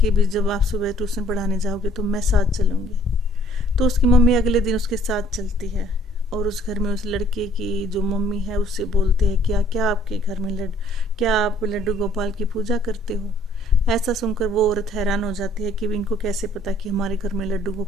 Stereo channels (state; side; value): normal; both; correlation 0.60